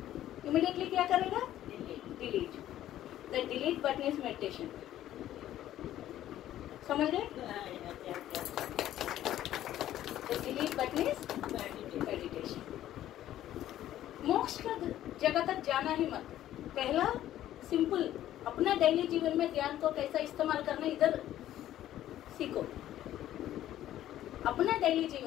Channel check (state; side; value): quieter; right; 12.8 dB